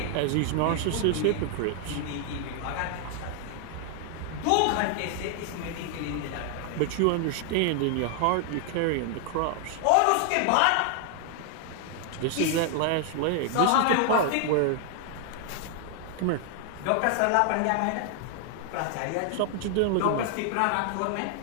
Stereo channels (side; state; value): both; different; correlation 0.00